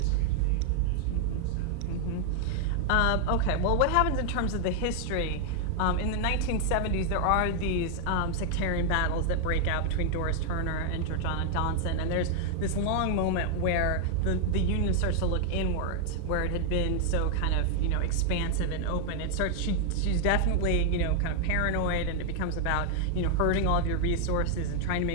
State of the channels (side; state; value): both; different; correlation 0.00